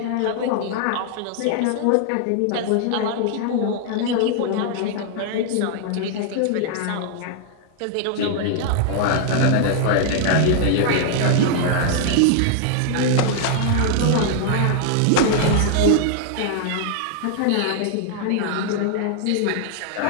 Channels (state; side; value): different; both; correlation -0.01